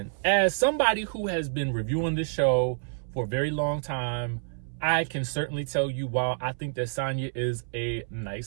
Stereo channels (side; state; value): left; silent; 59 dB below the other